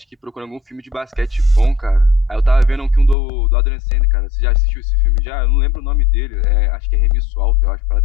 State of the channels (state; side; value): drops out; right; at 3.2 s